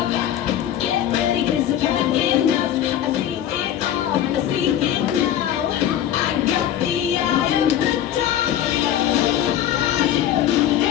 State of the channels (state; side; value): quieter; right; 11.0 dB